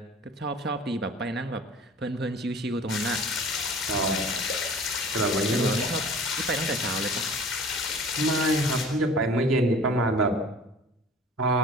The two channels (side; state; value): both; normal; correlation 0.44